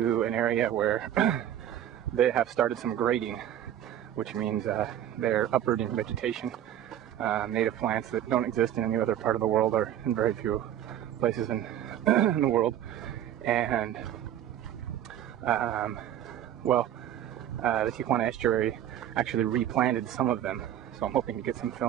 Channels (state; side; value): quieter; left; 11.2 dB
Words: an area where they have started some grading, which means they're uprooting vegetation, native plants that don't exist in any other part of the world or in very few places in the world. And the Tijuana estuary actually replanted some of them, so I'm hoping to get some